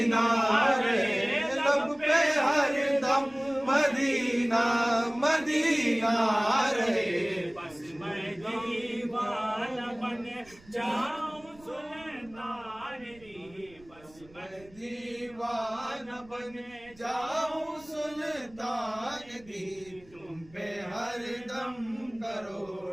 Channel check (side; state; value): right; noise; rumble, 25 dB below the sound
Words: رہے لب پہ ہر دم مدینہ مدینہ رہے بس میں دیوانہ بن جاؤں سلطان دی بس میں دیوانہ بن جاؤں سلطان دی تم پہ ہر دم